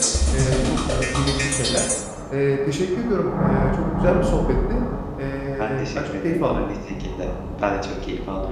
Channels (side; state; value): both; identical; correlation 1.00